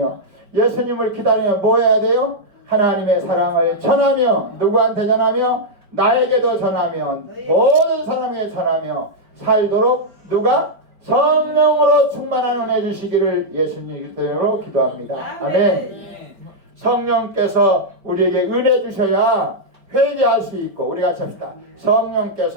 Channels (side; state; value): left; late; 4.8 ms